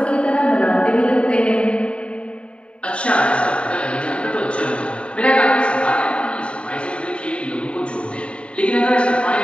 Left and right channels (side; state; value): right; late; 0.058 ms